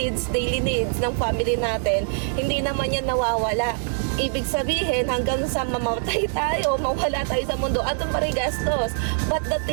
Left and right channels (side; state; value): left; silent; digital silence